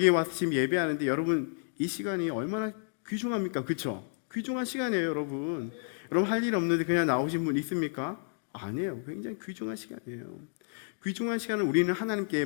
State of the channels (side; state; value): right; silent; digital silence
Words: 와서 지금 예배하는데 여러분 이 시간이 얼마나 귀중합니까? 그렇죠? 귀중한 시간이에요, 여러분. 여러분 할 일 없는데 그냥 나오신 분 있습니까? 아니에요. 굉장히 귀중한 시간이에요. 귀중한 시간은 우리는 하나님께